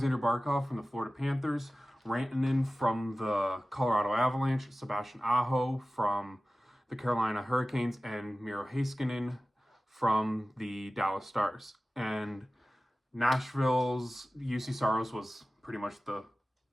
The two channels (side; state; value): both; normal; correlation 0.96